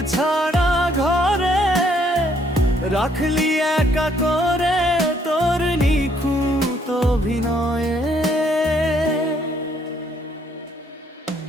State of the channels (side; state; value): both; normal; correlation 0.68